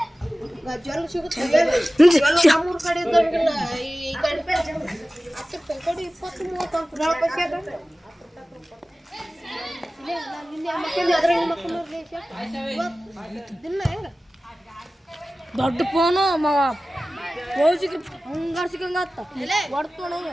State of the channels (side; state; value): both; normal; correlation 0.96